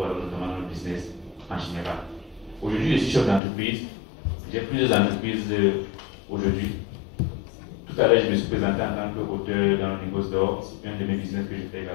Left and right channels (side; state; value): right; drops out; at 3.4 s